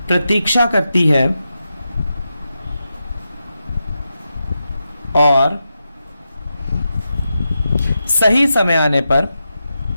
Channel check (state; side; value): inverted; both; correlation -0.89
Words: प्रतीक्षा करती है और सही समय आने पर